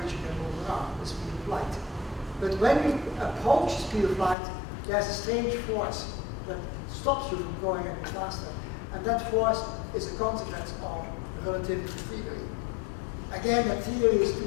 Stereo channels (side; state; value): right; drops out; at 4.4 s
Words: you can move around the speed of light. But when you approach the speed of light, there's a strange force that stops you from going any faster. And that force is a consequence of relativity theory. Again, that theory is too